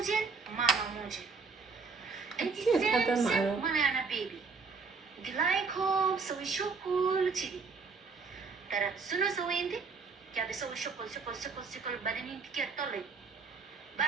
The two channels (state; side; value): quieter; left; 4.7 dB